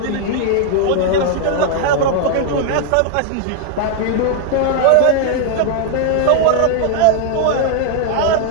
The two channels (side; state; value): both; different; correlation 0.00